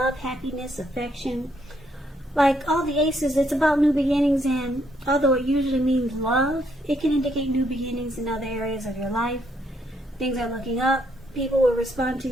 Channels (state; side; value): normal; both; correlation 0.73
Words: happiness, affection. Like all the aces, it's about new beginnings, and although it usually means love, it can indicate new beginnings in other areas of your life. Things are looking up. People will respond to